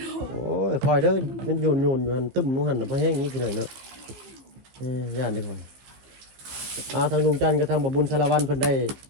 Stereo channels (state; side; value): late; left; 15 ms